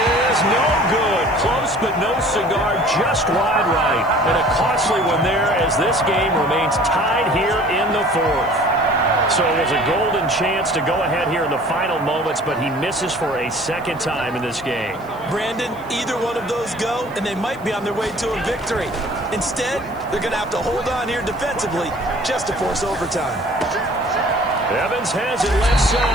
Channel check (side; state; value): left; noise; hiss, 26 dB below the sound